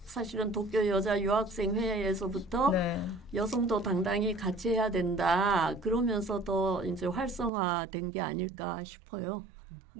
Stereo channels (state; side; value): drops out; left; at 7.5 s